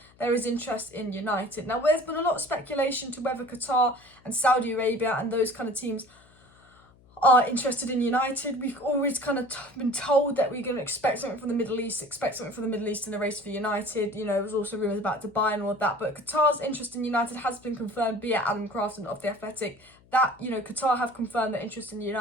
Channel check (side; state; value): left; noise; hum, 28 dB below the sound